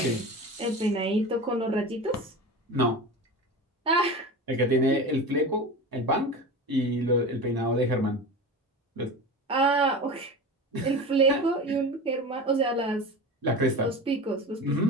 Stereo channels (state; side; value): normal; both; correlation 0.30